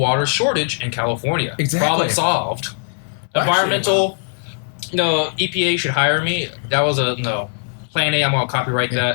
shortage in California. Exactly. Problem solved. Actually, Environmental. No, EPA should hire me. That was a no. Plan A. I'm gonna copyright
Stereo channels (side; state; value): right; silent; 55 dB below the other